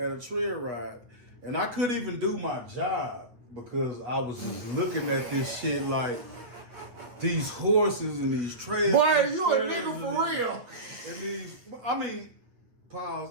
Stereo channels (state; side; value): late; left; 8.5 ms